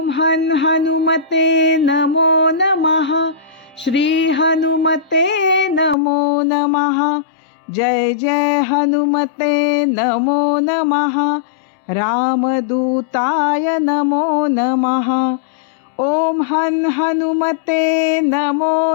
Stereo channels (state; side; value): drops out; right; at 6.0 s